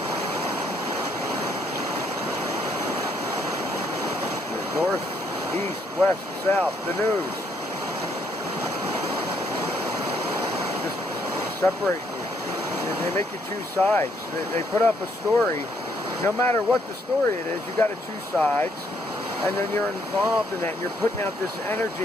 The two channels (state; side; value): normal; both; correlation 0.70